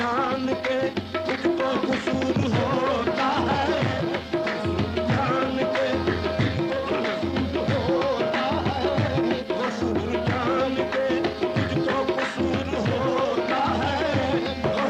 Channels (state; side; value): identical; both; correlation 1.00